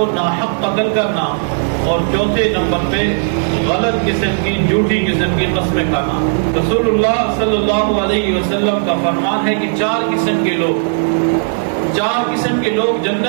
ناحق قتل کرنا، اور چوتھے نمبر پہ غلط قسم کی جھوٹی قسم کی قسمیں کھانا۔ رسول اللہ صلی اللہ علیہ وسلم کا فرمان ہے کہ 4 قسم کے لوگ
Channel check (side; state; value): left; silent; digital silence